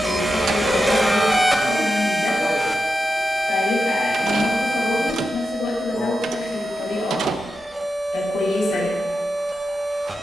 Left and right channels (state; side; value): normal; both; correlation 0.88